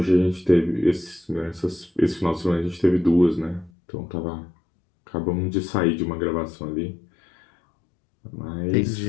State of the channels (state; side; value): drops out; right; at 3.7 s